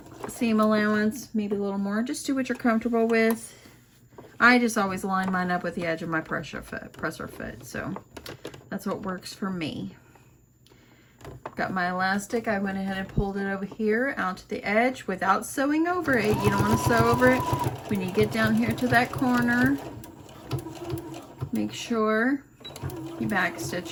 seam allowance, maybe a little more. Just do what you're comfortable with. I just always line mine up with the edge of my presser foot, so that's what works for me. Got my elastic. I went ahead and pulled it over here out to the edge without sewing over it. You don't want to sew over it. When you get down here to that corner, make sure you back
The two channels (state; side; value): identical; both; correlation 1.00